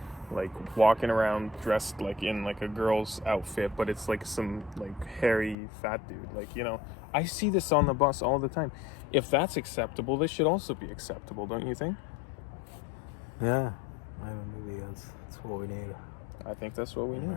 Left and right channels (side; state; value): right; drops out; at 5.6 s